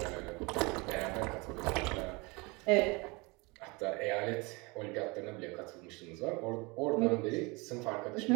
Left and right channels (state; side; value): quieter; left; 26.8 dB